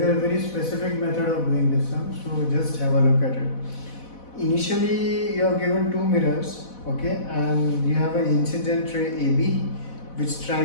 a very specific method of doing this sum, so just have a look at it. Initially, you are given two mirrors, okay, and you have an incident ray AB which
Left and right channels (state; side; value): late; right; 4.1 ms